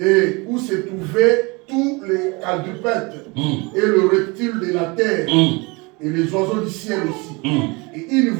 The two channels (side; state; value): left; quieter; 27.0 dB